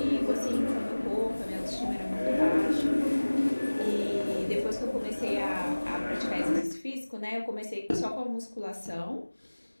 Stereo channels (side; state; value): both; inverted; correlation -1.00